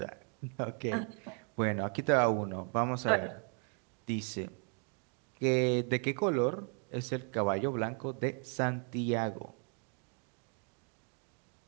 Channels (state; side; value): quieter; left; 39.9 dB